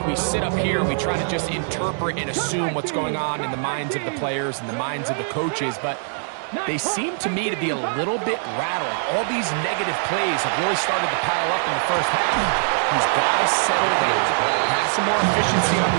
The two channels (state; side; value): silent; left; 64 dB below the other